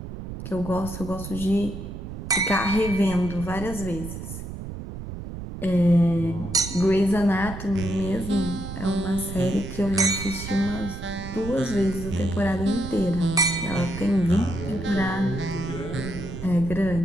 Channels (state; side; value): noise; right; rumble, 9 dB below the sound